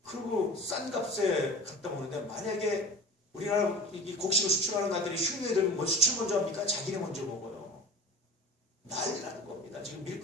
그리고 싼 값에 갖다 먹는데, 만약에 우리나라 이 곡식을 수출하는 나라들이 흉내에 들면 뭐 수출 먼저 합니까? 자기네 먼저 먹어요. 난리나는 겁니다. 지금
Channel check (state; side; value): normal; both; correlation 0.36